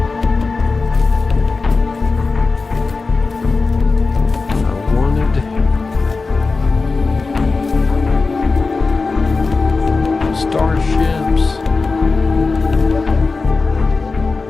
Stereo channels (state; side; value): quieter; right; 4.0 dB